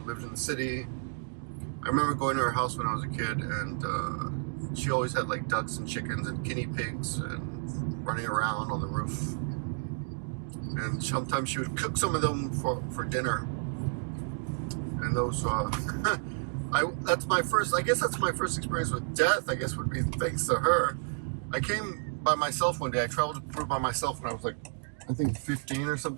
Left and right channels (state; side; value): silent; left; 57 dB below the other